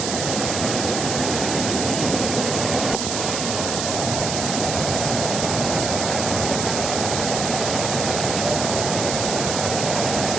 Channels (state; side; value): noise; right; hiss, 3 dB below the sound